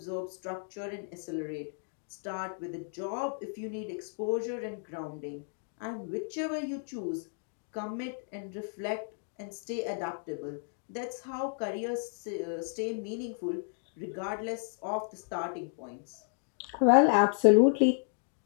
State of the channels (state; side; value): silent; right; 56 dB below the other